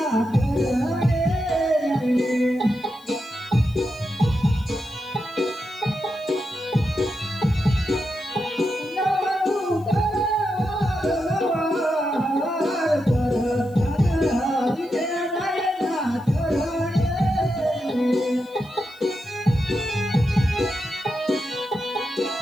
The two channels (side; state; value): left; noise; hiss, 28 dB below the sound